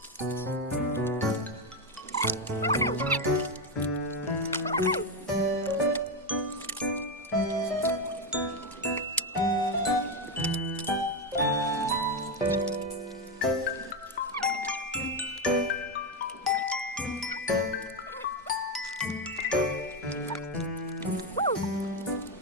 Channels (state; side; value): normal; both; correlation 0.10